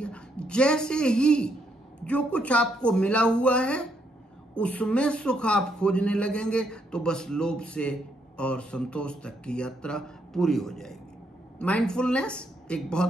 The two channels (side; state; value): both; normal; correlation 0.75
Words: जैसे ही जो कुछ आपको मिला हुआ है उसमें सुख आप खोजने लगेंगे तो बस लोभ से और संतोष तक की यात्रा पूरी हो जाएगी। माइंडफुलनेस एक